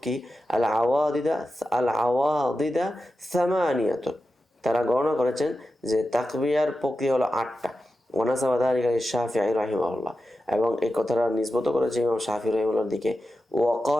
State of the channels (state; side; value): normal; both; correlation 0.91